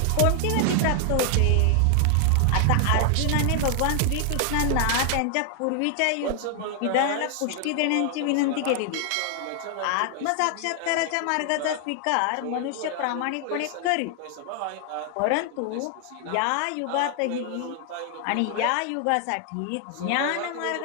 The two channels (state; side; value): different; both; correlation 0.00